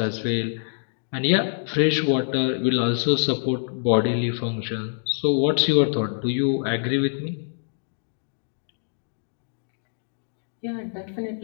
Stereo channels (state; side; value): silent; right; digital silence